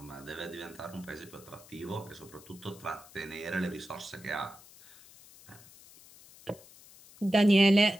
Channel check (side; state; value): left; noise; hiss, 22 dB below the sound